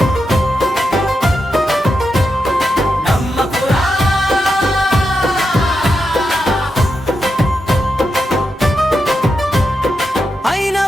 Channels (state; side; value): normal; both; correlation 0.86